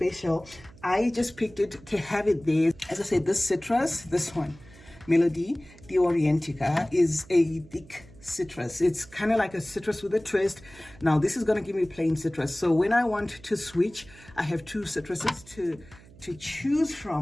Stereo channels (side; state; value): right; noise; hum, 22 dB below the sound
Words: I just picked it to have it there. As I said, this citrus, this one, Melody the Orientica, is a thick citrus. It's kind of like a citrus with a twist. Now this is going to give me plain citrus. So when I want to switch, I have two citruses to choose